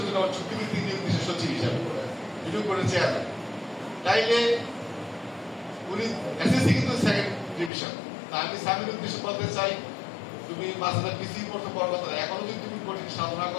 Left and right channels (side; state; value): right; drops out; at 7.7 s